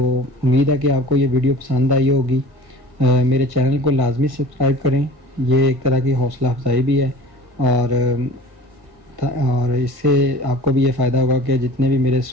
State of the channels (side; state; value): left; late; 1.7 ms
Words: उम्मीद है कि आपको ये वीडियो पसंद आई होगी। मेरे चैनल को लाजमी सब्सक्राइब करें, ये एक तरह की हौसला अफजाई भी है। और और इससे आपको भी ये फ़ायदा होगा कि जितने भी मेरे